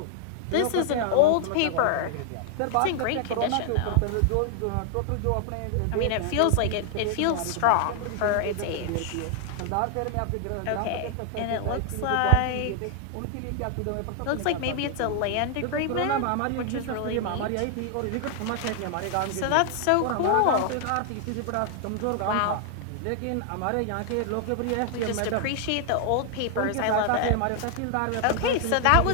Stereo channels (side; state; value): both; different; correlation 0.00